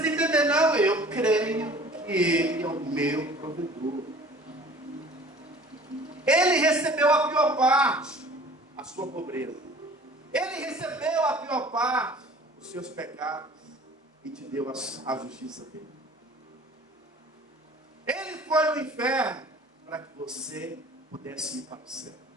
entender, não, eu creio que Ele é o meu provedor. Ele recebeu a pior parte, a sua pobreza. Ele recebeu a pior parte, os seus pecados, e te deu a justiça dele. Ele foi no inferno para que você pudesse ir para o céu.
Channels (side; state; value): both; normal; correlation 0.47